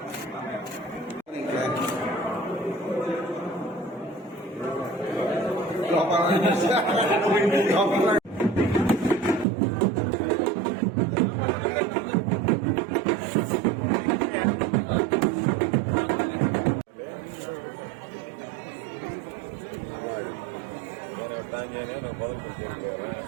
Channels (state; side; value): drops out; left; at 9.5 s